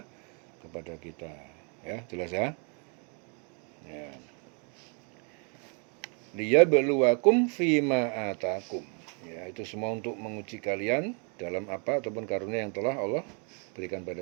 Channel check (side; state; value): left; quieter; 37.4 dB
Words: kita. Ya, jelas ya? Ya. Liyabluwakum fima atakum. Ya, itu semua untuk menguji kalian dalam apa ataupun karunia yang telah Allah berikan